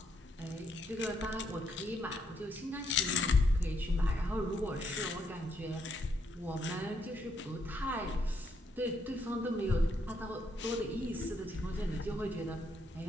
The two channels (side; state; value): both; normal; correlation 0.74